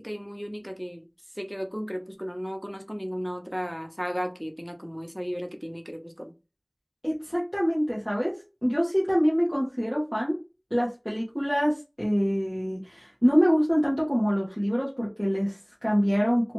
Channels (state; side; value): identical; both; correlation 1.00